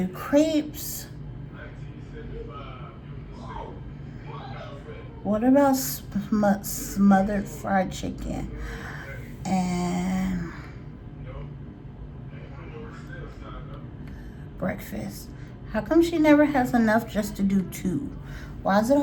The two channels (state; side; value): identical; both; correlation 1.00